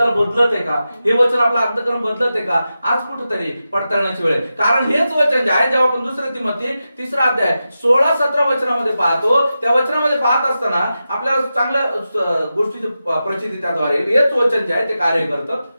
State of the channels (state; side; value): inverted; both; correlation -0.91